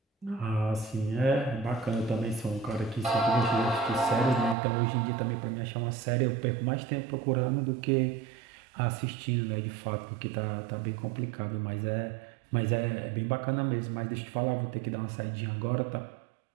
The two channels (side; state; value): left; drops out; at 4.5 s